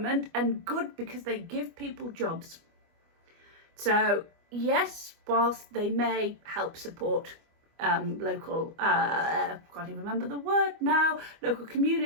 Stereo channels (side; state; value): left; late; 25 ms